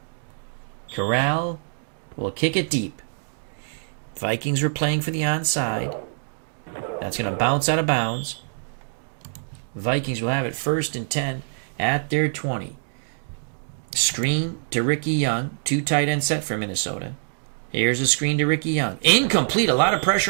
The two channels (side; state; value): left; silent; digital silence